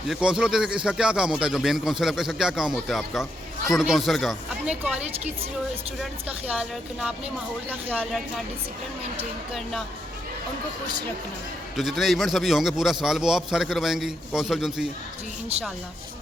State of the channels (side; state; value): both; normal; correlation 0.79